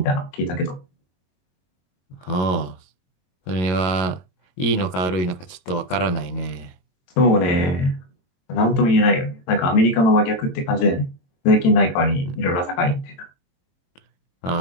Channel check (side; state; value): right; late; 22 ms